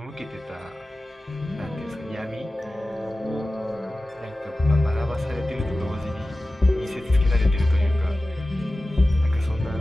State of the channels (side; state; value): both; normal; correlation 0.96